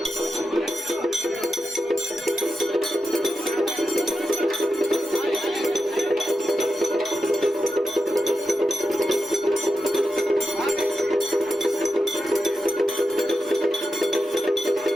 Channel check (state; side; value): normal; both; correlation 0.89